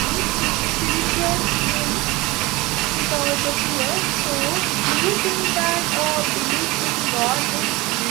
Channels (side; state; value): left; quieter; 22.0 dB